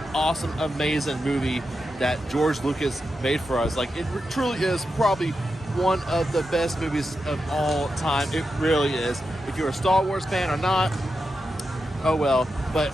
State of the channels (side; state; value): both; normal; correlation 0.88